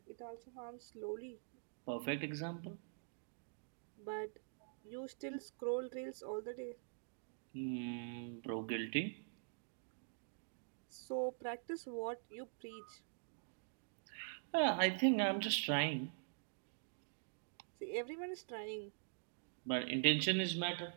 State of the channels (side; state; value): left; silent; digital silence